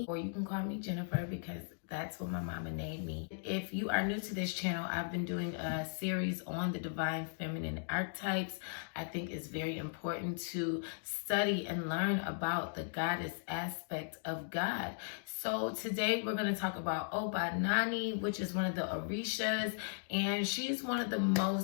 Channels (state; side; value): silent; right; digital silence